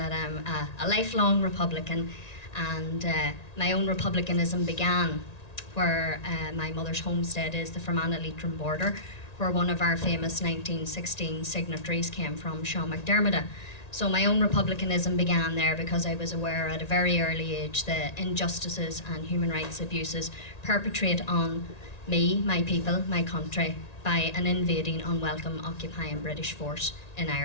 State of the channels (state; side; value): late; right; 1.9 ms